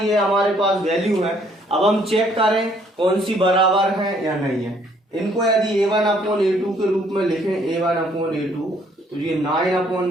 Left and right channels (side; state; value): both; normal; correlation 0.64